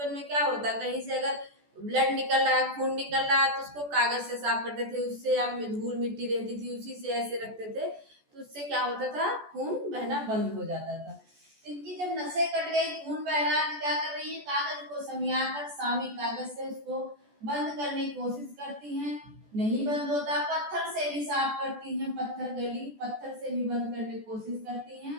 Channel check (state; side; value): late; left; 14 ms